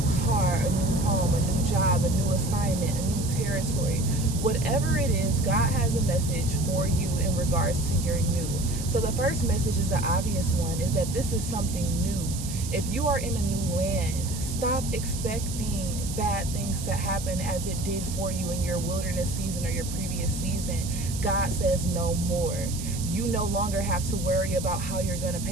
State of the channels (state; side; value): noise; right; hiss, 10 dB below the sound